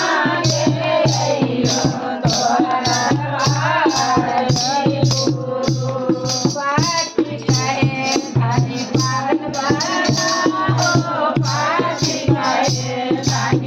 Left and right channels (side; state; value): both; identical; correlation 1.00